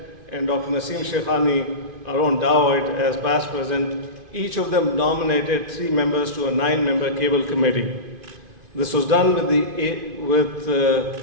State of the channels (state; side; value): late; left; 2.5 ms